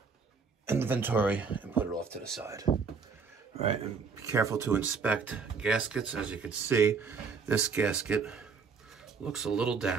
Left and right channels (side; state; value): left; quieter; 5.3 dB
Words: and the Venturi and put it off to the side. All right, and be careful to inspect gaskets. As you can see, this gasket looks a little